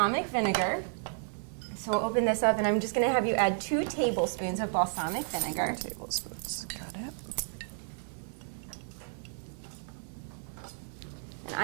vinegar. So we'll open this up, and I'm just going to have you add 2 tablespoons of balsamic vinegar. 2 tablespoons. Got it. And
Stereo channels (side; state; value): left; silent; digital silence